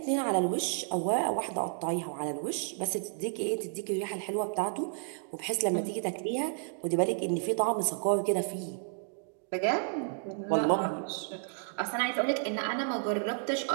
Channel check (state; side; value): silent; left; digital silence